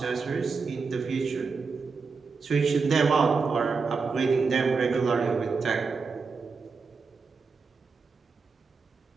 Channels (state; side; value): quieter; left; 4.8 dB